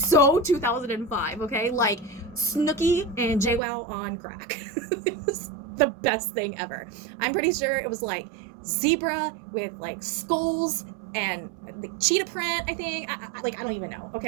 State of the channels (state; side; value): drops out; left; at 3.6 s